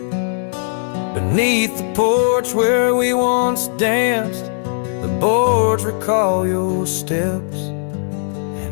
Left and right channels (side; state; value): right; silent; 66 dB below the other